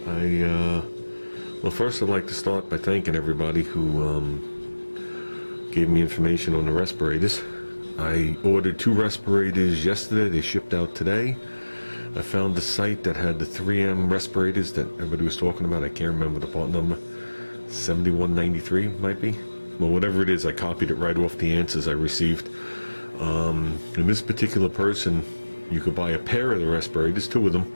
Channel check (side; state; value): both; inverted; correlation -1.00